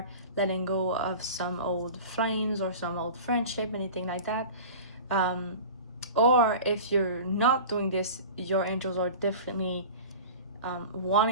letting go of some old flames or some old friendship, anything like that. Or if you're not doing this, your angels are definitely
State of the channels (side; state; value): both; inverted; correlation -0.36